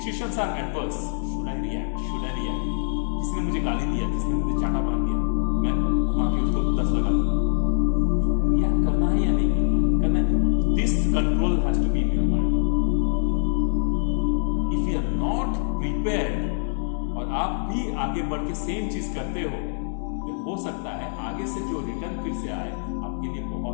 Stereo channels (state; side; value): silent; right; 62 dB below the other